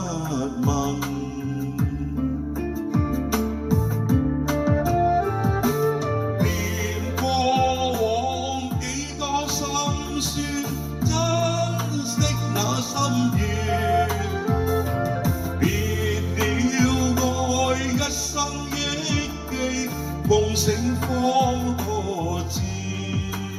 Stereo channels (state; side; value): identical; both; correlation 1.00